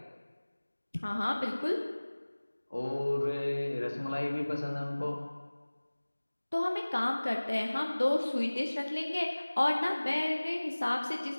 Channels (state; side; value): inverted; both; correlation -1.00